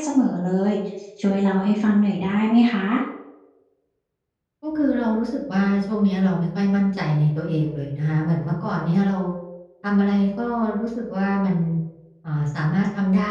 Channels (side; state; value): both; identical; correlation 1.00